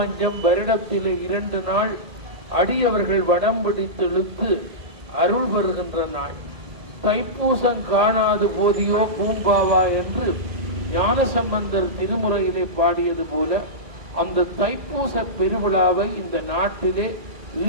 வருடத்திலே 2 நாள் அடியவர்கள் வடம் பிடித்து இழுத்து அருள் பெறுகின்ற நாள். தைப்பூசம் காணாது போதியோ பூம்பாவா என்று ஞானசம்பந்தர் திருமுறையிலே பாடியது போல அந்த தைப்பூச பெருவிழாவை இந்த நாட்டிலே,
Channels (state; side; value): late; left; 1.8 ms